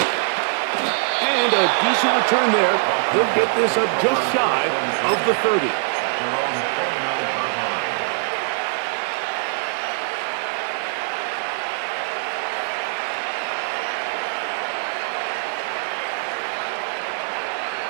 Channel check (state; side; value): silent; left; 64 dB below the other